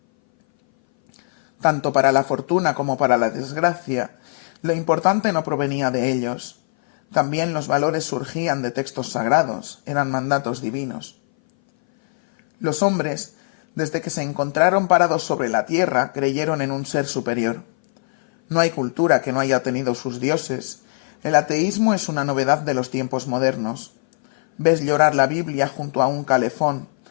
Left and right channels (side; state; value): right; silent; 60 dB below the other